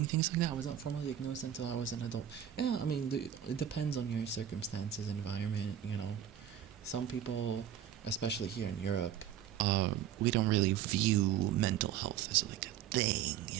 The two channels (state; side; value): quieter; left; 10.1 dB